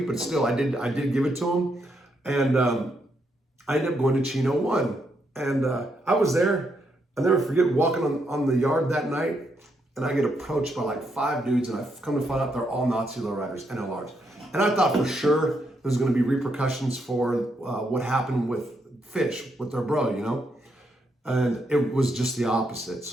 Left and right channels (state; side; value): normal; both; correlation 0.78